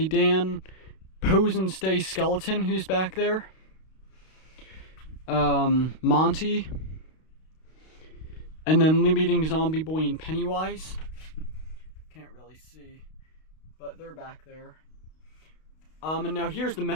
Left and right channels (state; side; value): late; right; 32 ms